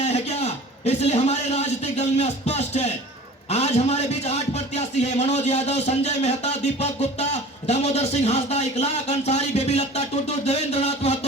आए हैं क्या? इसलिए हमारे राजनीतिक दल में स्पष्ट है। आज हमारे बीच 8 प्रत्याशी है। मनोज यादव, संजय मेहता, दीपक गुप्ता, दामोदर सिंह हांसदा, इकलाक अंसारी, बेबी लत्ता टुटू, देवेंद्र नाथ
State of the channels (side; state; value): both; normal; correlation 0.42